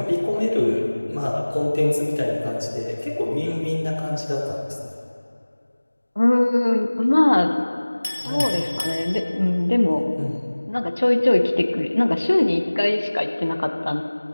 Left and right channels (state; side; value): inverted; both; correlation -1.00